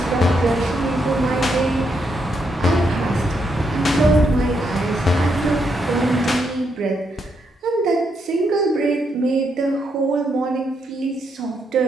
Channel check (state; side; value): normal; both; correlation 0.79